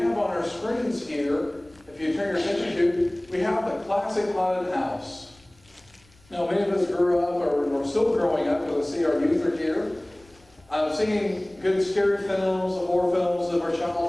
on our screens here. If you turn your attention to, we have the classic haunted house. Now, many of us grew up, or we're still growing up, because I see our youth are here. Seeing good scary films, horror films of our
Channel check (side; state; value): left; noise; rumble, 30 dB below the sound